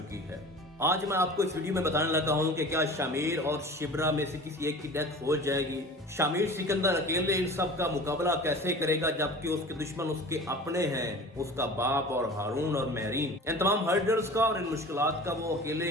है। आज मैं आपको इस वीडियो में बताने लगा हूं कि क्या शामिर और शिब्रा में से किसी एक की डेथ हो जाएगी। शामिर सिकंदर अकेले इन सब का मुकाबला कैसे करेगा जबकि उसके दुश्मन उसके अपने हैं, उसका बाप और हारून और महरीन। इन तमाम हर्डल्स का और इन मुश्किलात का वो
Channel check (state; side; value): normal; both; correlation 0.39